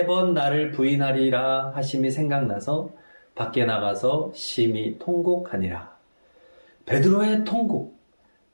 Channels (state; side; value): inverted; both; correlation -1.00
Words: 나를 부인하리라 하심이 생각나서 밖에 나가서 심히 통곡하니라. 베드로의 통곡,